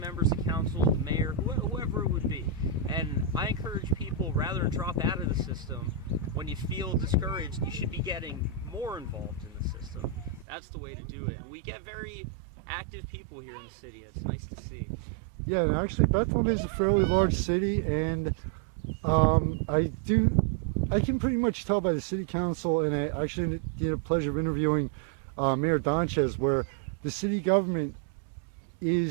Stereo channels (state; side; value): drops out; left; at 10.5 s